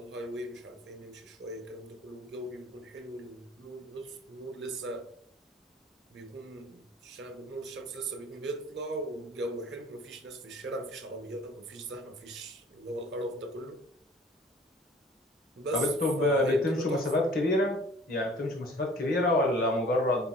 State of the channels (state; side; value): normal; both; correlation 0.51